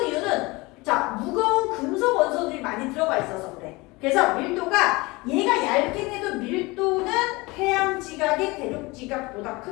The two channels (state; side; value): quieter; right; 23.5 dB